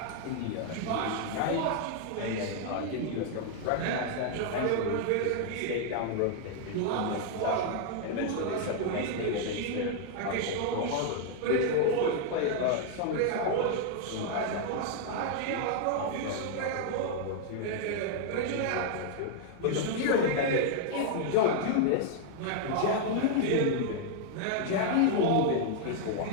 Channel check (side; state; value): both; different; correlation 0.00